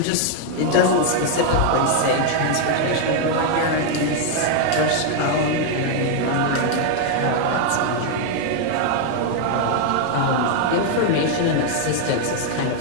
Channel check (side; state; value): both; different; correlation 0.00